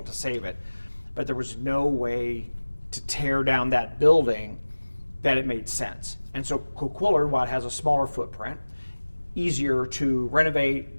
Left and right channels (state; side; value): inverted; both; correlation -1.00